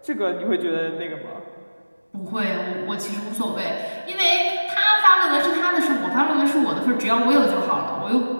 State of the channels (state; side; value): inverted; both; correlation -1.00